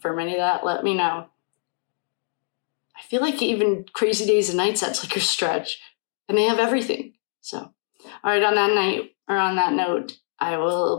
any of that, let me know. I feel like even Crazy Days and Nights, that's like a stretch. And they have everything. So, all right, on that note, I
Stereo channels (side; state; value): right; silent; digital silence